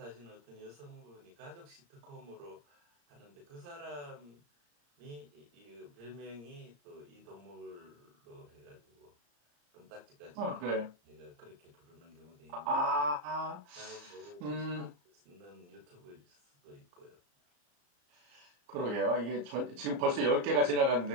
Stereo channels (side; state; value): left; late; 34 ms